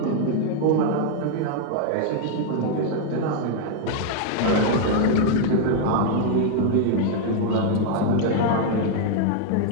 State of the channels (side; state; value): both; different; correlation 0.00